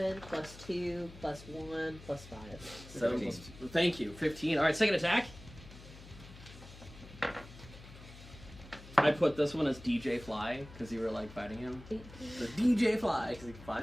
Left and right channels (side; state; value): left; noise; hum, 17 dB below the sound